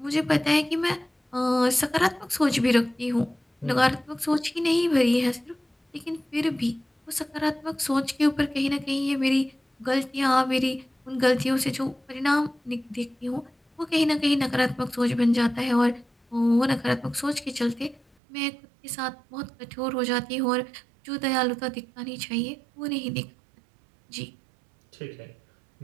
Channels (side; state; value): left; drops out; at 18.0 s